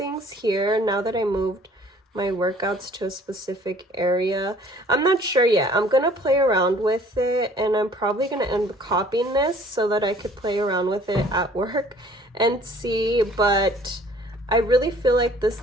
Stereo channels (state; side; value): normal; both; correlation 0.54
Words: here now that I moved my workouts to a specific area. I'm not sure yet. I'm gonna play around with it, and I'm probably gonna end up copying this so that I could play around with it at work and see, but I really feel like